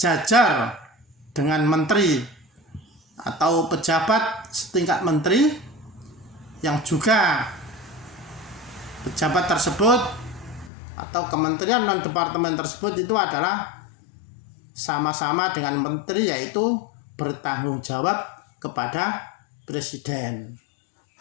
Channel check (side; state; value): right; drops out; at 10.7 s